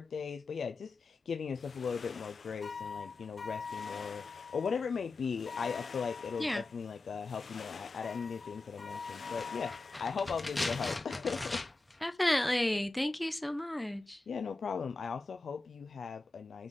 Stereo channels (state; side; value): quieter; right; 3.4 dB